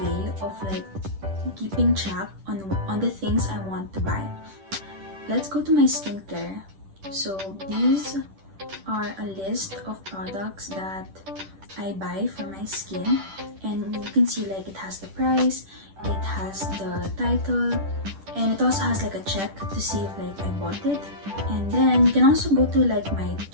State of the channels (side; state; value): left; late; 10 ms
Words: of like keeping track on the things I want to buy. Let's go to my skincare. So these are a list of products that I buy for my skin, and you can see like it has the price, it has the title, and it also has like a check to see if like I bought it. And then you can also go to like my